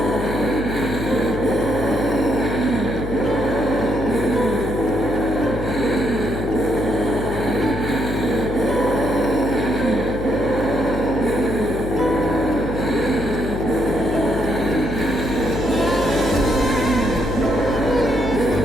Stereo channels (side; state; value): left; noise; hum, 7 dB below the sound